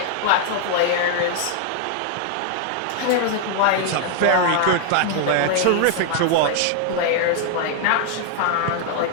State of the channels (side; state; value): both; different; correlation 0.00